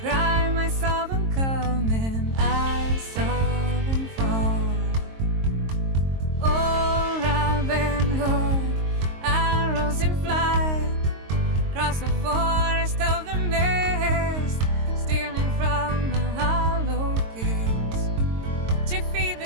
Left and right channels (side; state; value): left; late; 22 ms